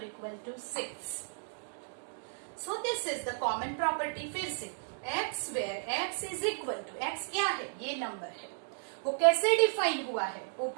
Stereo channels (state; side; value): silent; left; digital silence